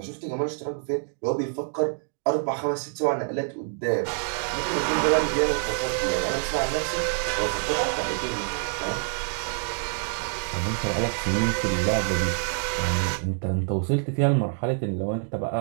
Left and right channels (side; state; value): left; silent; 58 dB below the other